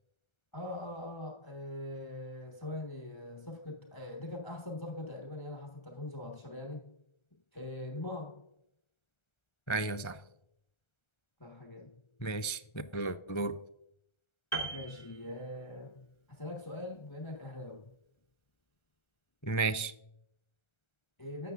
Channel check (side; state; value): right; late; 1.3 ms